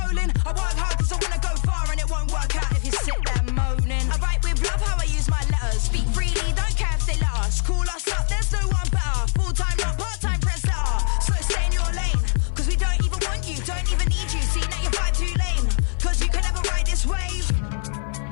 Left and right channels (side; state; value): right; silent; 63 dB below the other